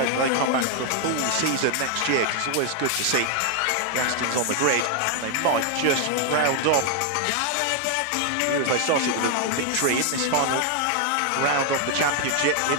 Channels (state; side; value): different; both; correlation 0.00